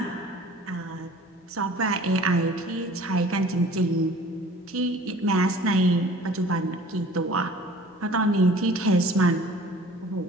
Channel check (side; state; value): both; normal; correlation 0.48